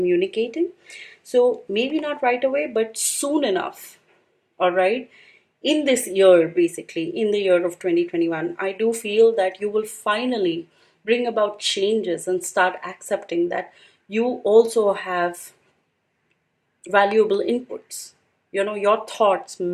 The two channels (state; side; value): identical; both; correlation 1.00